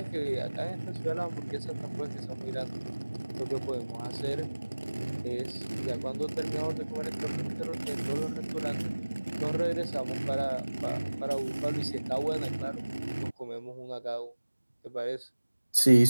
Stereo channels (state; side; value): inverted; both; correlation -1.00